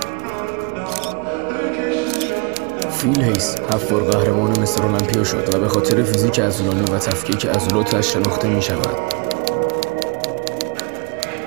فیل هیس 7 بار قهرمان مستر المپیا شد و به خاطر فیزیک عضلانی و تفکیک عضلاتش شناخته می شود.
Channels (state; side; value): quieter; left; 31.1 dB